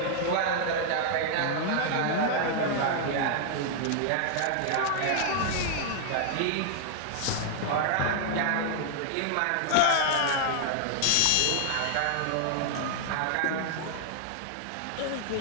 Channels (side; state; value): both; different; correlation -0.01